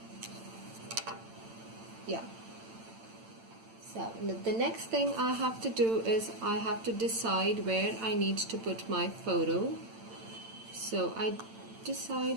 Yeah. So the next thing I have to do is I have to decide where I need to put my photo. So I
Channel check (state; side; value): late; left; 8.9 ms